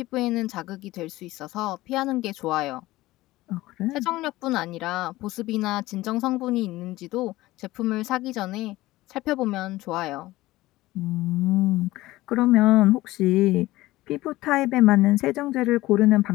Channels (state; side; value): quieter; right; 17.9 dB